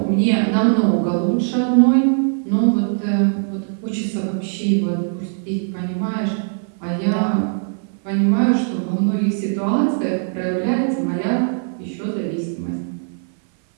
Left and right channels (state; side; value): silent; left; 60 dB below the other